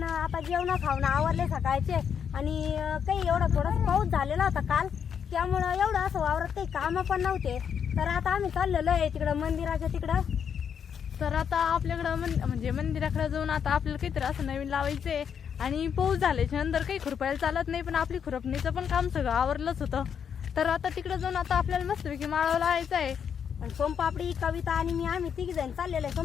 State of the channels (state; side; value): quieter; right; 7.6 dB